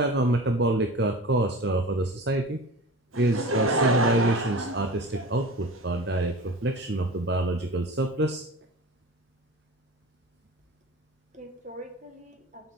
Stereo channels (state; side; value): normal; both; correlation 0.35